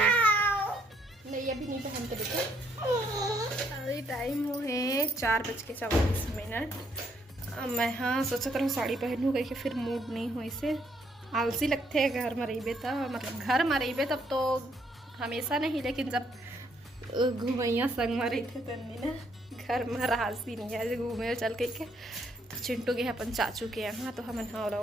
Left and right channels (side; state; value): both; normal; correlation 0.71